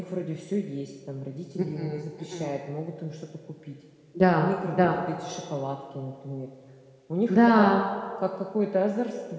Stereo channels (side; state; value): both; identical; correlation 1.00